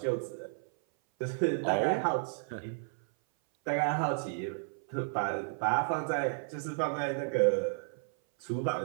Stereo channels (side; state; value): left; silent; 56 dB below the other